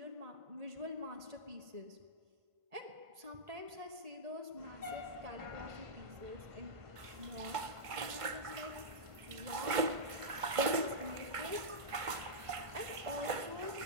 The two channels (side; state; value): left; late; 1.5 ms